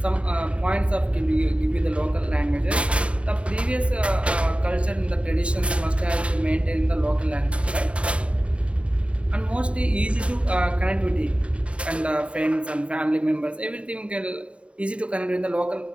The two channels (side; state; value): left; late; 0.061 ms